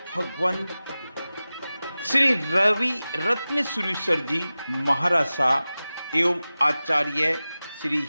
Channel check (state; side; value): inverted; both; correlation -0.96